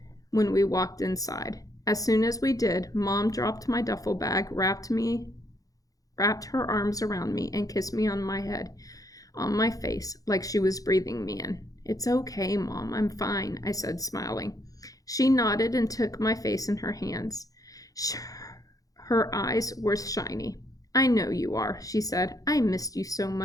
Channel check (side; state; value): right; late; 0.17 ms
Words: when we walked inside. As soon as we did, Mom dropped my duffel bag, wrapped her arms around me, and kissed me on my head, on my face, like she was breathing me in. "It's okay, Mom, I'm fine," I said, smiling. She nodded and took my face in her hands. Her eyes were shiny. "I know you are," she said. "I missed you so